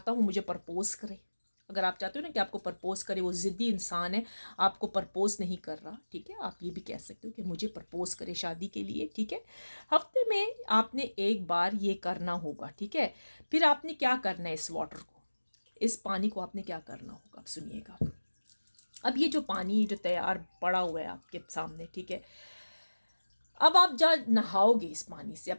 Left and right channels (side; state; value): both; inverted; correlation -1.00